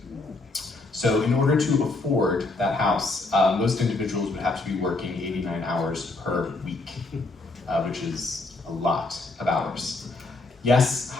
So in order to afford that house, most individuals would have to be working 89 hours per week, which is a lot of hours. Yes,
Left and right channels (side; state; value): right; quieter; 3.3 dB